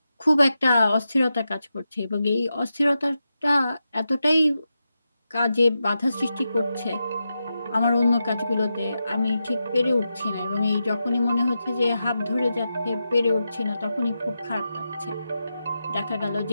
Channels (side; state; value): both; inverted; correlation -0.89